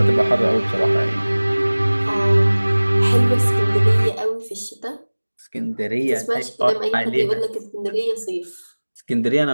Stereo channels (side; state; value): both; inverted; correlation -1.00